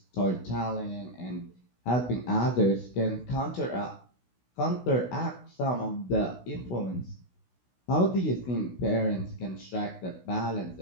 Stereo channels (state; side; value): late; right; 16 ms